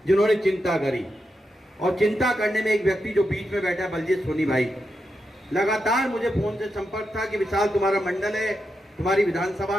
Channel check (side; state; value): both; normal; correlation 0.86